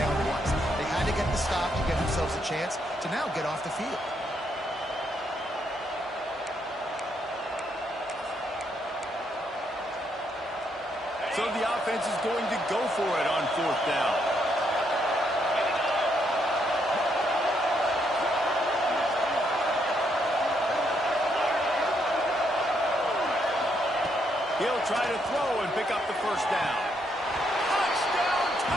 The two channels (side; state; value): both; normal; correlation 0.75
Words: was. They had to get the stop to give themselves a chance to now get off the field. So the offense is going to go for it on fourth down. He'll try to throw and pick up the first down. Touchdown,